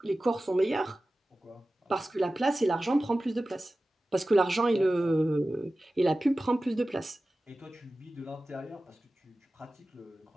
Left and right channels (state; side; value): normal; both; correlation 0.96